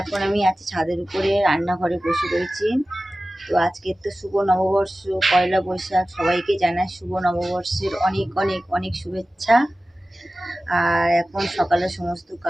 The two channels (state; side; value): normal; both; correlation 0.96